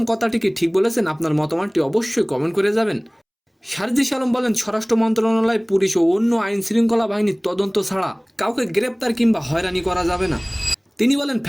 কথাটি কি ঠিক বলেছেন? আপনার মতামতটি অবশ্যই কমেন্ট করে যাবেন। সারজিস আলম বলেন, স্বরাষ্ট্র মন্ত্রণালয়, পুলিশ ও অন্য আইন শৃঙ্খলা বাহিনীর তদন্ত ছাড়া কাউকে গ্রেপ্তার কিংবা হয়রানি করা যাবে না। তিনি বলেন,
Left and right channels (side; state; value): both; identical; correlation 1.00